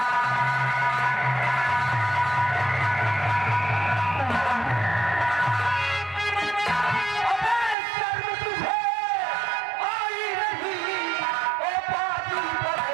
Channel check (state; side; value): drops out; left; at 7.8 s